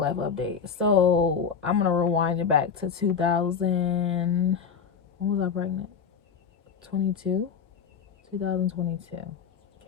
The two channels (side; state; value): right; quieter; 6.5 dB